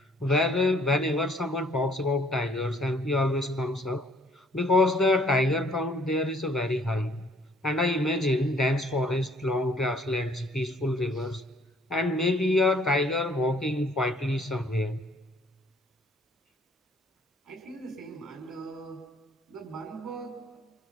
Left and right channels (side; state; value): both; normal; correlation 0.60